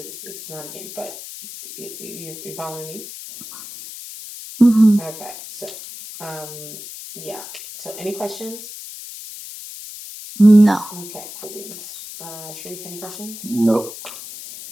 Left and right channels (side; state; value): left; noise; hiss, 12 dB below the sound